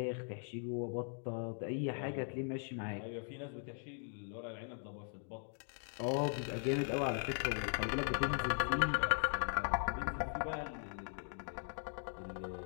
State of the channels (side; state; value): right; silent; 51 dB below the other